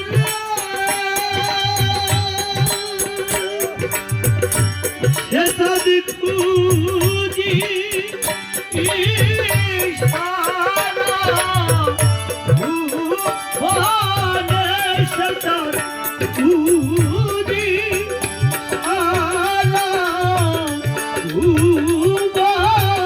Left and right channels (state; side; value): identical; both; correlation 1.00